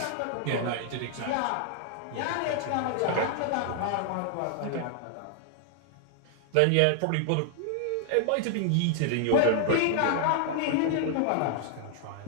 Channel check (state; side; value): different; both; correlation 0.00